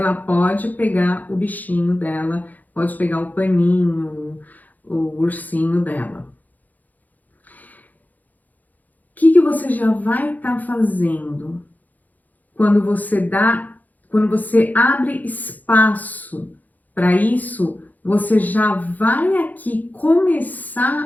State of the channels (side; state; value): right; late; 0.081 ms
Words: pode pegar o bichinho dela, pode pegar o paninho, o ursinho dela. O que você já vai estar fazendo quando você abre espaço para isso? Você já vai aqui